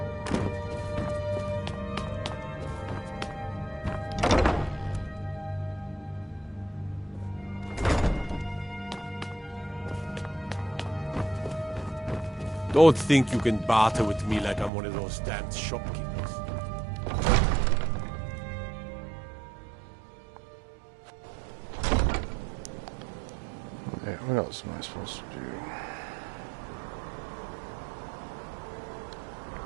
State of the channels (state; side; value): drops out; left; at 14.7 s